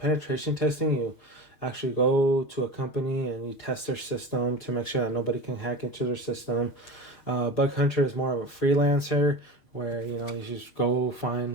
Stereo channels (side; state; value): right; late; 6.6 ms